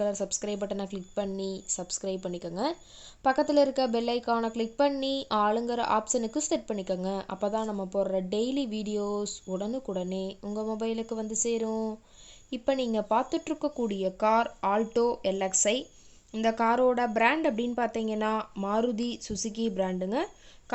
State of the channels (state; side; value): identical; both; correlation 1.00